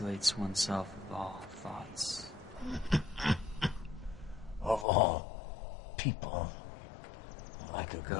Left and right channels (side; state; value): right; drops out; at 4.9 s